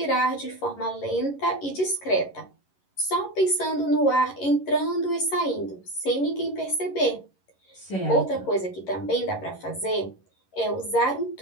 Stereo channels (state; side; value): late; right; 11 ms